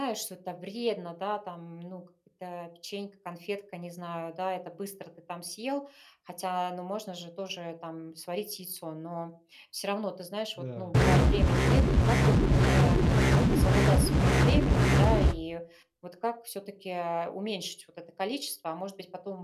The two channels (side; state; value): both; identical; correlation 1.00